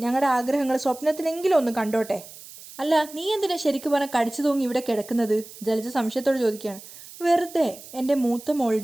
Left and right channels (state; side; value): noise; right; hiss, 17 dB below the sound